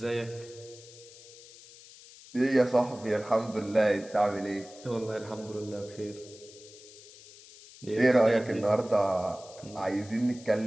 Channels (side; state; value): left; noise; hiss, 20 dB below the sound